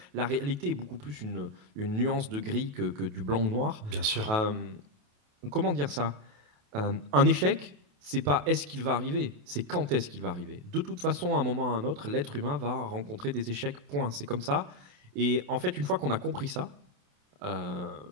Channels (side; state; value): left; late; 28 ms